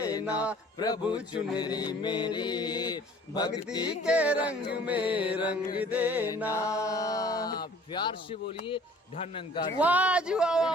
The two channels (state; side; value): normal; both; correlation 0.51